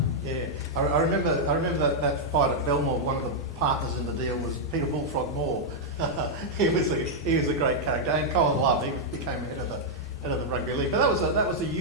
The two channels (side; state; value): both; normal; correlation -0.04